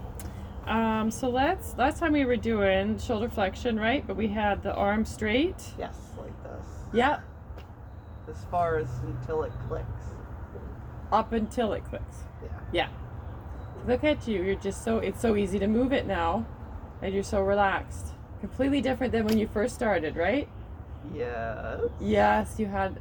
So last time we were doing shoulder flexion, right? But we had the arm straight. Yes, like this. Yeah. As far as until it clicks. Up until it clicks. Yeah. Yeah. Look at you. You're just it's so easy to move it now. And you're so relaxed. Completely different than when you first started, right? Yes. Yes, you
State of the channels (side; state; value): both; identical; correlation 1.00